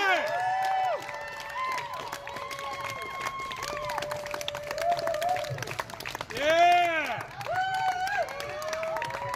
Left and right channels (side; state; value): both; identical; correlation 1.00